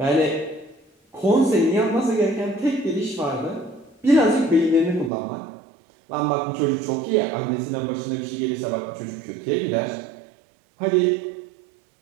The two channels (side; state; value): left; drops out; at 5.1 s